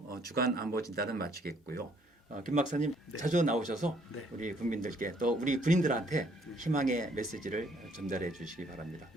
주간 안보 진단은 마치겠고요. 김 박사님 자주 나오셔서 우리 국민들께 또 우리 군인들한테 희망의 메시지를 전달해 주시기 바랍니다.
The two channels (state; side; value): normal; both; correlation 0.65